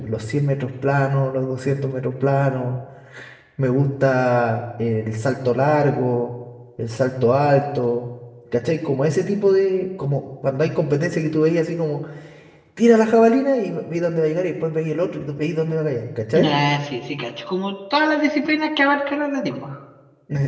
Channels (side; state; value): both; identical; correlation 1.00